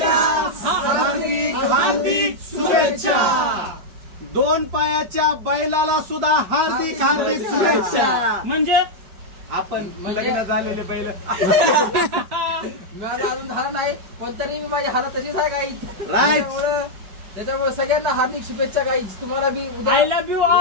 हार्दिक शुभेच्छा. 2 पायाच्या बैलाला सुद्धा हार्दिक शुभेच्छा. म्हणजे आपण लग्न झालेले बैल. माझं अजून झालं नाही पण तरी मी माझी हालत तशीच आहे गाईज. राईट. त्याच्यामुळे सगळ्यांना हार्दिक शुभेच्छा गाईज. तुम्हाला बी आय लव्ह यू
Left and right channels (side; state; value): left; late; 5.2 ms